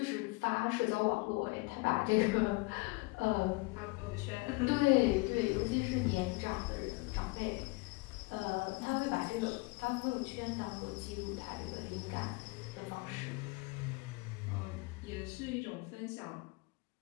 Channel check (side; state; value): right; quieter; 25.9 dB